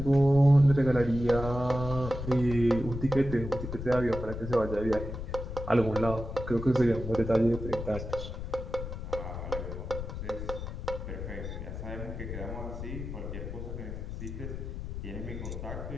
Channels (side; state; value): left; noise; rumble, 7 dB below the sound